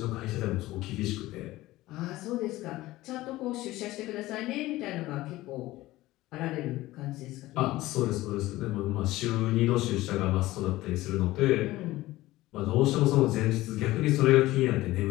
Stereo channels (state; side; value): quieter; right; 17.4 dB